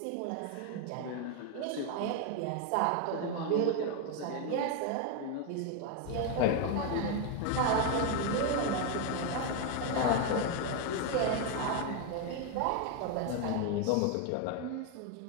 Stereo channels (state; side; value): different; both; correlation 0.01